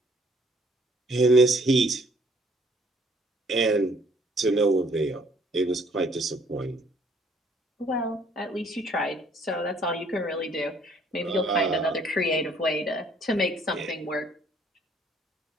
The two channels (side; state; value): both; normal; correlation 0.62